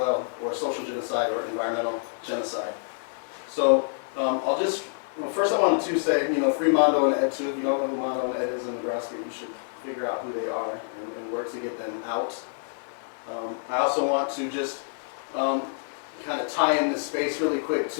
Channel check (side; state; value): right; silent; digital silence